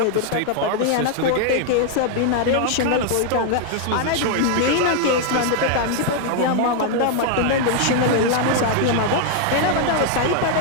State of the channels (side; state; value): both; different; correlation 0.00